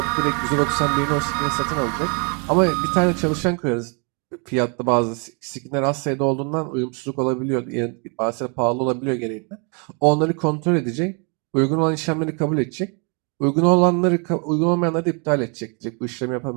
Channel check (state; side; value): quieter; left; 36.0 dB